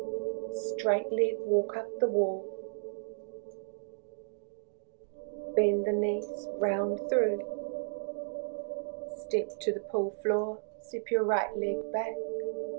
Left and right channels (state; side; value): silent; left; digital silence